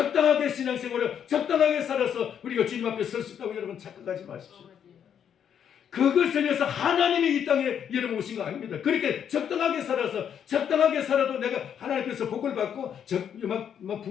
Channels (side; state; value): right; quieter; 8.6 dB